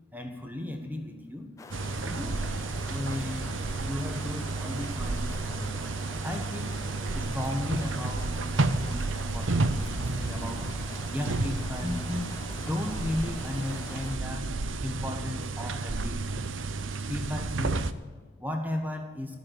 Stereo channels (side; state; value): both; normal; correlation 0.74